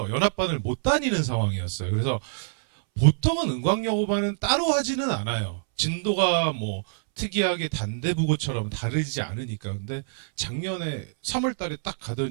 연합반을 못 다니는 상황이었어요. 그래서 보통은 은광여고반은 따로 하지는 않아요. 진도가 뭐 특이하게 단대부고처럼 다르지 않으니까. 근데 작년에 3월 달에 딱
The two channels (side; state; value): left; silent; 61 dB below the other